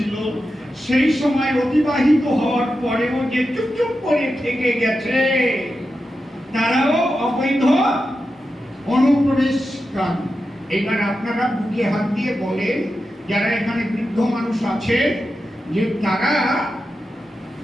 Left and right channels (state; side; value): normal; both; correlation 0.90